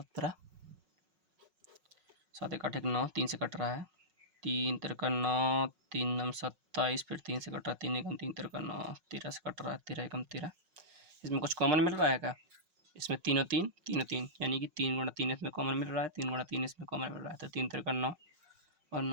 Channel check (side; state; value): left; late; 5.4 ms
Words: 7 1 8 1 9, 3 से कट रहा है, 3 3 9, 3 9 27, फिर 3 से कट रहा है, 3 एकम 3 3 9, 13 से कट रहा है, 13 एकम 13। इसमें कुछ कॉमन मिल रहा है क्या? इसमें तीनों 3, यानी कि 3 गुणा 3 इसमें कॉमन मिल रहा है, 3 गुणा 3 इसमें कॉमन मिल रहा है, तो 3 3 9 और